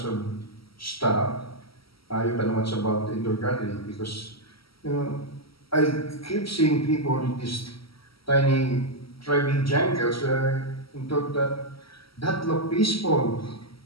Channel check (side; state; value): right; late; 0.75 ms